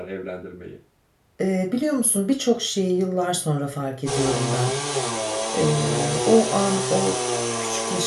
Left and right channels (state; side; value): identical; both; correlation 1.00